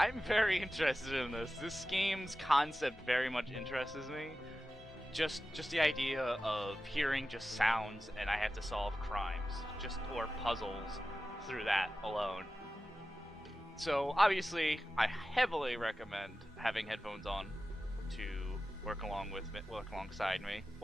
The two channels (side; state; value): both; normal; correlation 0.94